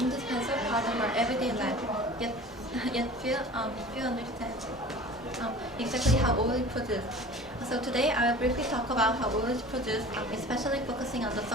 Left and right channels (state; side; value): normal; both; correlation 0.41